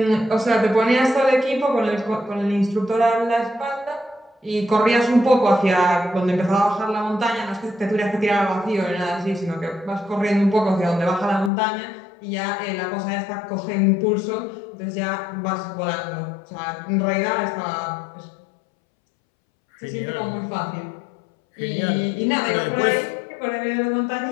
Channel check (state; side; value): drops out; right; at 11.5 s